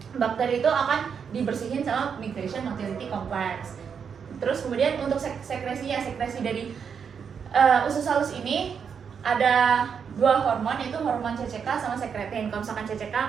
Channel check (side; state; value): left; quieter; 6.8 dB